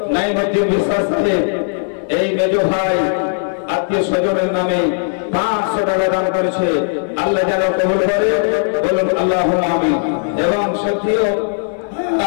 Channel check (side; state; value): right; silent; digital silence